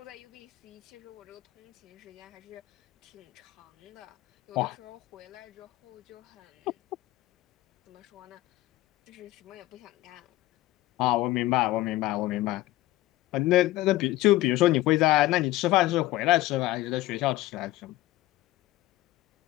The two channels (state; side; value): quieter; right; 17.0 dB